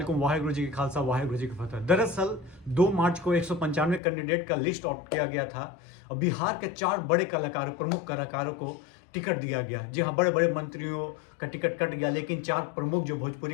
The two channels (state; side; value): drops out; right; at 4.0 s